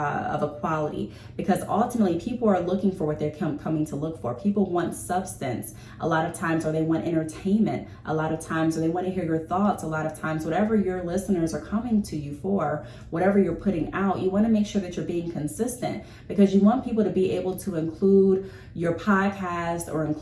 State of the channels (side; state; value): both; identical; correlation 1.00